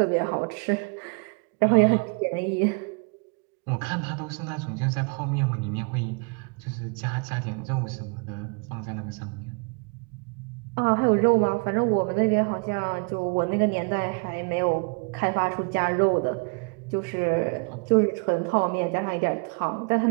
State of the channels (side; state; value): left; quieter; 34.7 dB